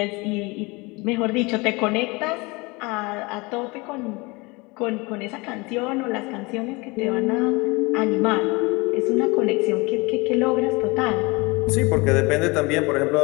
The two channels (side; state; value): right; quieter; 25.5 dB